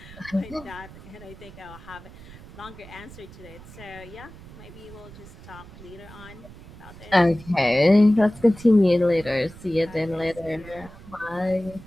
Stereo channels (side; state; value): right; noise; rumble, 18 dB below the sound